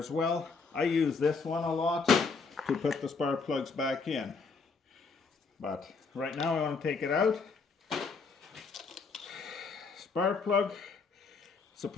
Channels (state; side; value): quieter; right; 4.7 dB